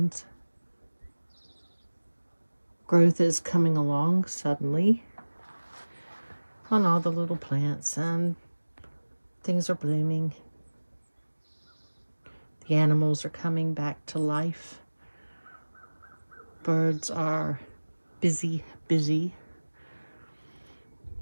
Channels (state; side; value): inverted; both; correlation -1.00